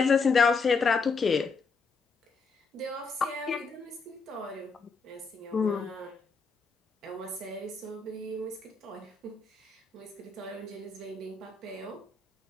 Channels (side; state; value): right; quieter; 4.5 dB